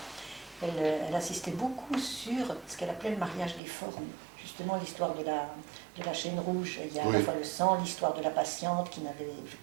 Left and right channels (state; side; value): drops out; left; at 3.6 s